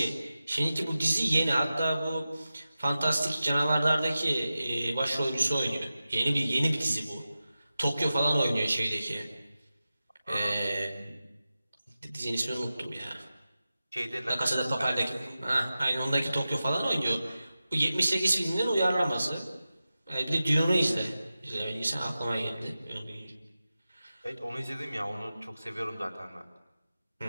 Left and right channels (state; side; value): inverted; both; correlation -0.94